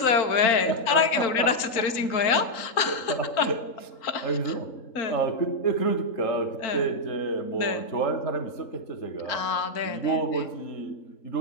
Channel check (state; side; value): late; right; 3.8 ms